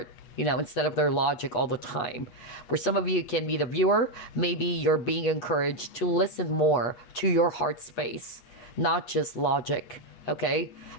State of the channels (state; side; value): late; right; 8.4 ms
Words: instead of their logic all the time. For some of you, can be the viewer, maybe you're being encouraged to listen more to your heart space, not just logic, okay?